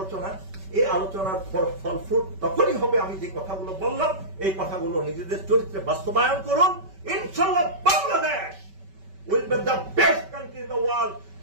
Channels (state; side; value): late; left; 5.2 ms